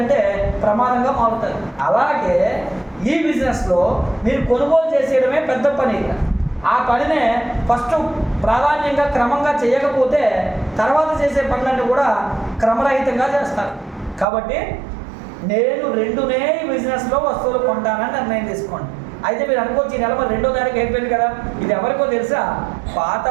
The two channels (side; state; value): left; drops out; at 14.2 s